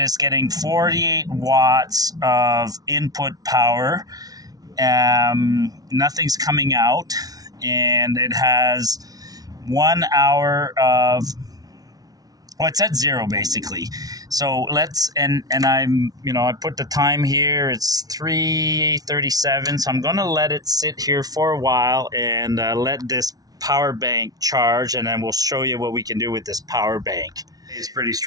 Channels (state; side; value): late; left; 0.18 ms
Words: it's getting 48 watts of input power. Nothing's coming out, and it has 1 hour of... Well, it's at 0 basically. So I put the time here. It's 3:37. So I'm going to let it sit here for a while and let this power bank charge, and then we'll show you what we can do with this power bank. It's pretty